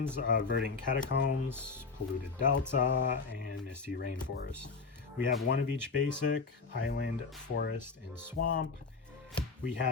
Verdant Catacombs, Polluted Delta, and Misty Rainforest. We have 1 of each basic, Island, Forest, and Swamp. We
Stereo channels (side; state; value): right; quieter; 4.6 dB